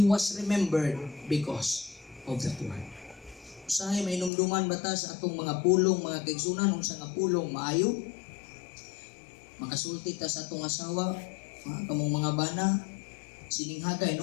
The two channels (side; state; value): right; drops out; at 4.3 s